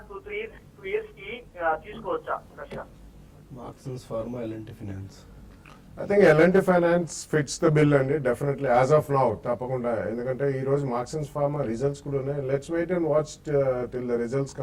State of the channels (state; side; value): identical; both; correlation 1.00